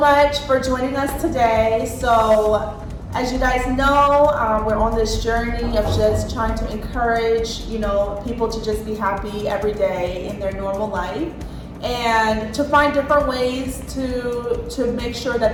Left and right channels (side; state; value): both; identical; correlation 1.00